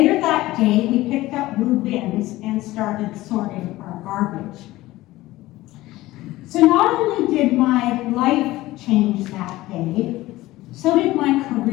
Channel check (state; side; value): quieter; right; 17.5 dB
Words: that day, we picked up blue bins and started sorting our garbage. So not only did my life change that day, so did my